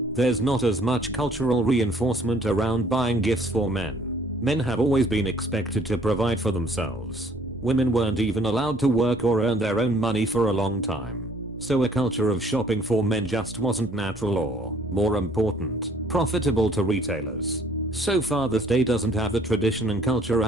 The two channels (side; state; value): both; normal; correlation 0.58